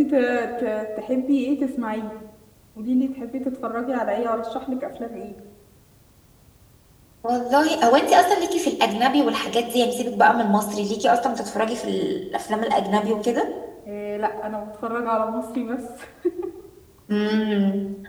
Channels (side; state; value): both; identical; correlation 1.00